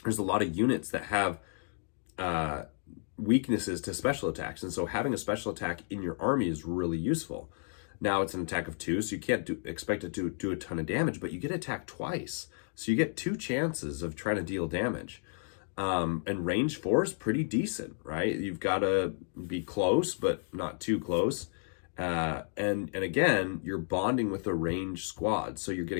a lot of units that have weaknesses to special attacks, and so having a special attack in your army is really useful. Now it's an attack of 2, so you can't expect it to do a ton of damage, but you get attacked twice. So you get 2 chances of trying to deal damage. And range 4 is pretty decent, right? You've got to be close, but not too close. And again, you're bonding with a ranged squad. So you're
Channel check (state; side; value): silent; right; 56 dB below the other